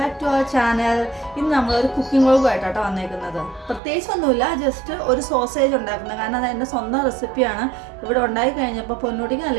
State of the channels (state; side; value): drops out; left; at 3.8 s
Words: to our channel. ഇന്ന് നമ്മളൊരു കുക്കിംഗ് വ്ളോഗുമായിട്ടാണ് വന്നേക്കുന്നത്. പ്രത്യേകിച്ചൊന്നുമില്ല, ജസ്റ്റ് ഒരു സോസേജ് ഉണ്ടാക്കുന്നത്. കാരണം അത് എൻ്റെ സ്വന്തം റെസിപ്പിയാണ്. ഇവിടെ ഉണ്ടാക്കി കഴിഞ്ഞപ്പോൾ പൊന്നൂട്ടിക്ക്